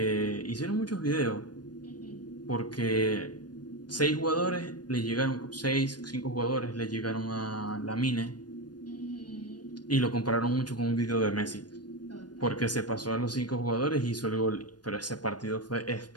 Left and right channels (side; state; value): right; late; 0.69 ms